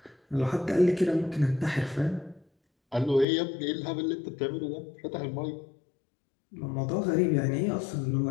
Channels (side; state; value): right; drops out; at 3.2 s